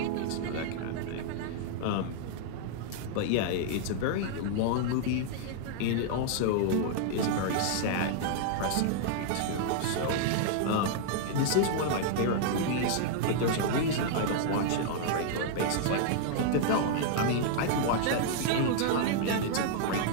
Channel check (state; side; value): different; both; correlation -0.01